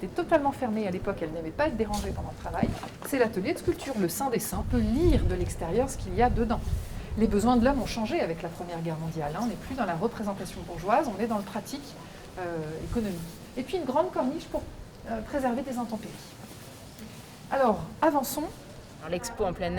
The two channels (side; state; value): both; identical; correlation 1.00